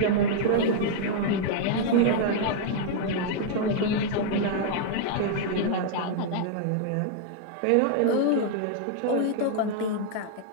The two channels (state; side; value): different; both; correlation -0.01